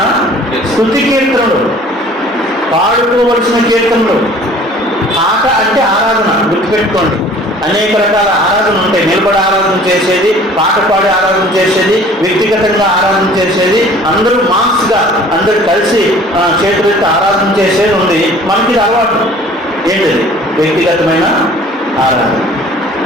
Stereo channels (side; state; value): both; normal; correlation 0.50